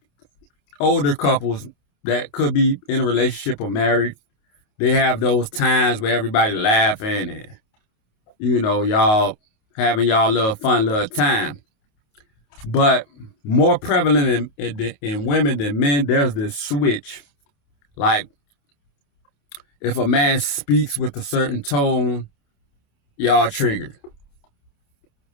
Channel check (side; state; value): right; late; 28 ms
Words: older couples that could be in a relationship or married, they have those times where everybody laughing and, you know, y'all having y'all little fun little time. But more prevalent in women than men, there's this switch. Like, if a man speaks with a certain tone, y'all triggered.